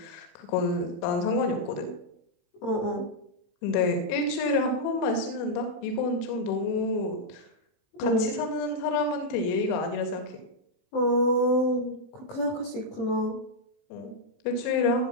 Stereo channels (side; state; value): right; late; 20 ms